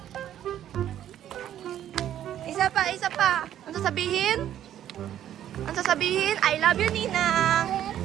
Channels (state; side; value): quieter; left; 11.2 dB